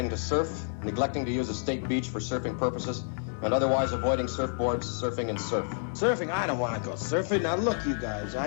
to surf, neglecting to use a state beach for surfing purposes, and otherwise avoiding surfboards, surfing, and surf. Surfing? I don't want to go surfing. Now look, you guys,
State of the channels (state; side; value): silent; right; 58 dB below the other